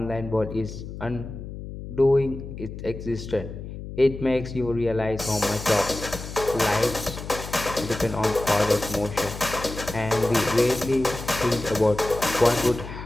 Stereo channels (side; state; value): left; noise; hum, 10 dB below the sound